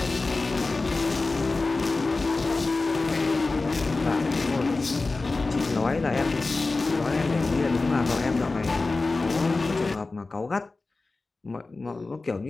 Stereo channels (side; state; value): right; quieter; 3.5 dB